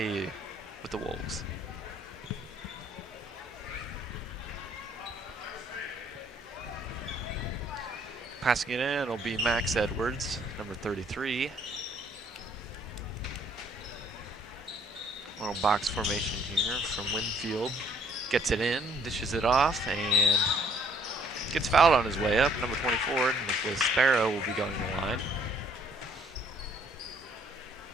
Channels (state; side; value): normal; both; correlation 0.62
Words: with the Wolves. Passing it in will be Max Edwards, number 33. Little box formation here from Winfield. Gets it in, dishes it off, and gets fouled on his way up. Number 24, Nicholas Sparrow, will be going to the line.